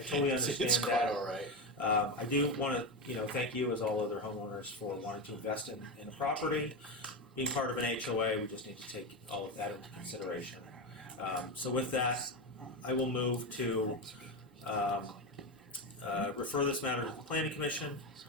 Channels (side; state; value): both; normal; correlation 0.15